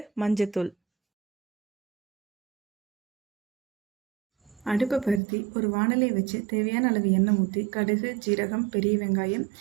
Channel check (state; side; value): drops out; left; at 5.2 s